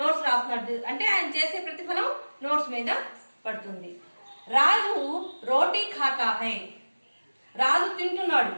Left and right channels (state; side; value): inverted; both; correlation -1.00